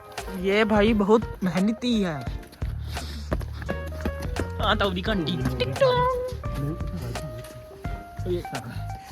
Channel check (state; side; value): identical; both; correlation 1.00